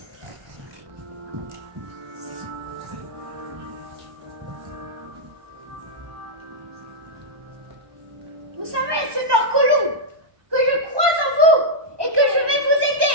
Vous savez, Seigneur Colomb, que je crois en vous et que je vais vous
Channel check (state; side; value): late; left; 1.2 ms